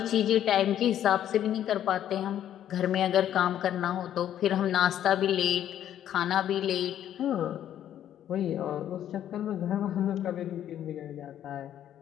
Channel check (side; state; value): right; quieter; 10.9 dB